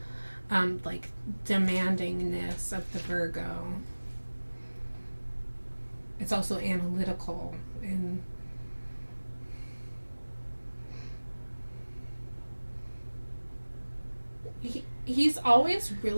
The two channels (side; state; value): both; inverted; correlation -1.00